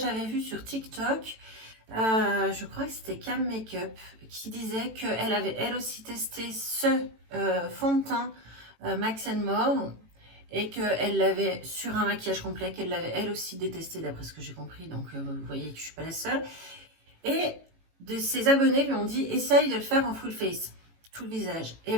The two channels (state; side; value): late; left; 18 ms